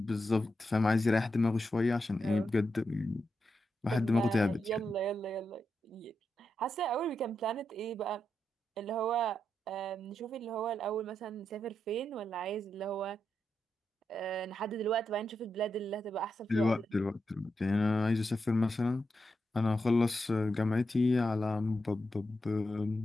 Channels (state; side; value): normal; both; correlation 0.85